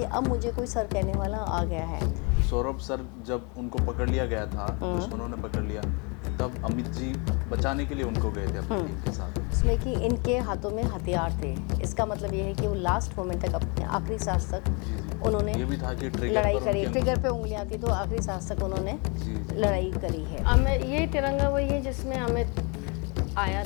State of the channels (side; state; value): right; quieter; 32.2 dB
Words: अब मुझे कोई सर कहने वाला आ गया है। सौरभ सर जब उनको पकड़ लिया गया था, दुश्मनों ने पकड़ लिया, तब अमित जी बचाने के लिए उनको गए थे अपनी टीम के साथ। उसमें कि इनके हाथों में हथियार थे। इसका मतलब ये है कि वो लास्ट मोमेंट तक, अपने आखिरी सांस तक उन्होंने ये भी था कि ट्रिगर लड़ाई पर करी। उनके- ट्रिगर पे उंगलियां थी तो आखिरी सांस तक उन्होंने जी। लड़ाई करी है। अमित, ये तिरंगा वही है जिसमें अमित आया